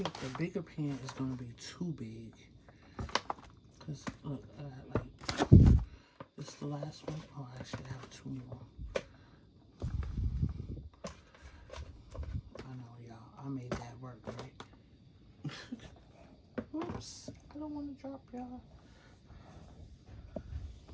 the bigger pan is going to be too big. Because, look, this is the last one. Oh, I actually have two more. I know, y'all. I made that work, right? Oops. I don't want to drop y'all.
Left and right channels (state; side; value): identical; both; correlation 1.00